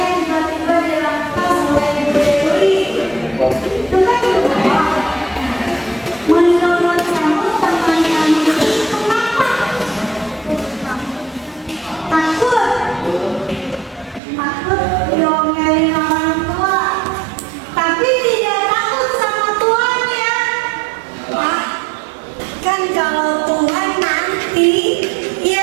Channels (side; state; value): left; drops out; at 14.2 s